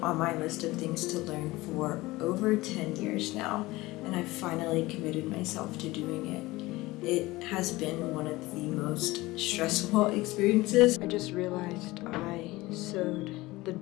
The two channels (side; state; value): right; quieter; 19.8 dB